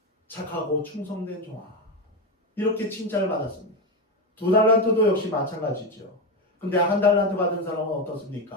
착하고 충성된 종아, 이렇게 칭찬을 받았습니다. 2달란트도 역시 마찬가지죠. 근데 1달란트 받은 사람은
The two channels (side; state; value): both; normal; correlation 0.12